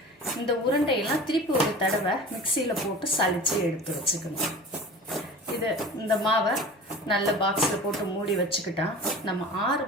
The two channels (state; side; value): normal; both; correlation 0.38